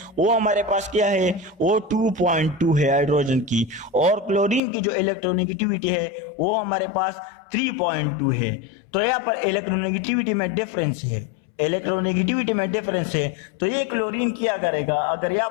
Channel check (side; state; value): right; drops out; at 4.6 s